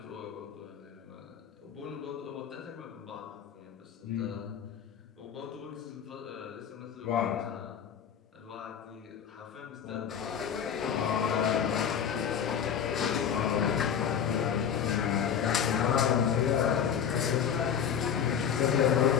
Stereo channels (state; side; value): quieter; right; 8.1 dB